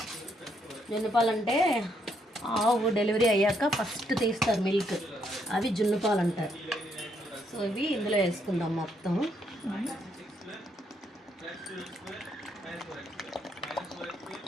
జున్నుపాలు అంటే ఆవు డెలివరీ అయ్యాక ఫస్ట్ తీస్తారు మిల్క్, అవి జున్నుపాలు అంటారు. సో ఇవి ఇందులో వేసుకుందాం మొత్తం.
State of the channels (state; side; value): normal; both; correlation 0.74